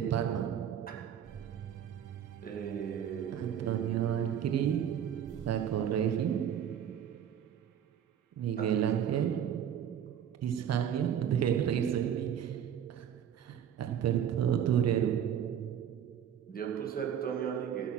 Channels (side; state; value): left; quieter; 9.2 dB